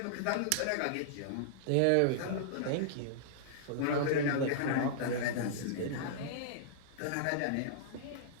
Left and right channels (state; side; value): different; both; correlation -0.02